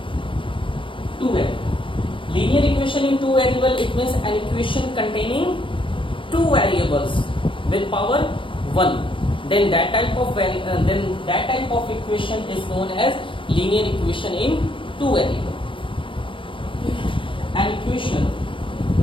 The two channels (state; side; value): late; right; 0.25 ms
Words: two variable. Linear equation in two variable, it means an equation containing two variables with power 1. Then that type of equation is known as linear equation in two variable. An equation